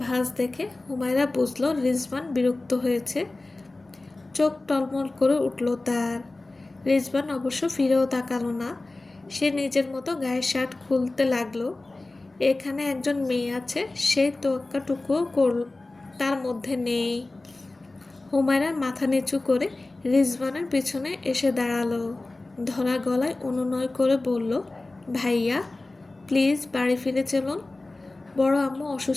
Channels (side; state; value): right; quieter; 3.0 dB